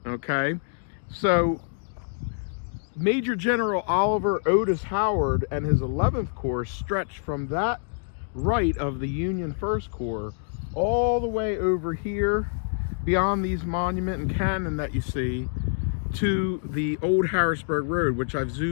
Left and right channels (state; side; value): silent; right; digital silence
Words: Okay, so Major General Oliver Otis Howard and his 11th Corps stretched from that right of the Union 1st Corps all the way over here beyond these monument and cannon that you see to the old Harrisburg Road, which I've